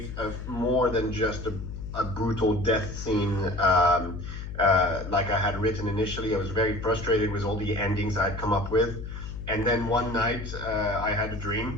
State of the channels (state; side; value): noise; left; hum, 8 dB below the sound